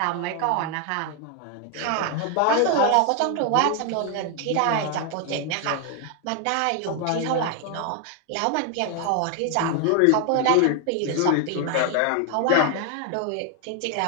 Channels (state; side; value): different; both; correlation 0.00